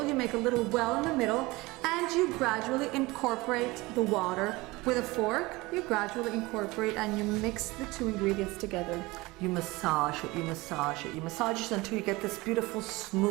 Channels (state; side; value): quieter; left; 21.9 dB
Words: you make a little well in the middle, and you gradually incorporate the water. With a fork, you gradually incorporate and you mix the 2 ingredients together. You massage it, you massage it, you massage it until you get this beautiful